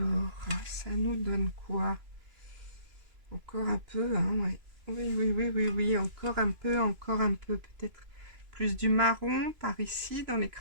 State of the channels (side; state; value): left; late; 3.0 ms